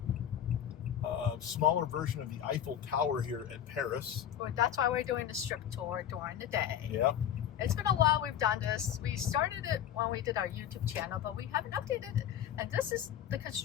smaller version of the Eiffel Tower here at Paris. Well, that's why we're doing the Strip tour during the day. Yeah. It's been a while we've done this. We started it when we did our YouTube channel, but we haven't updated it. And this is the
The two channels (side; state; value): right; quieter; 10.0 dB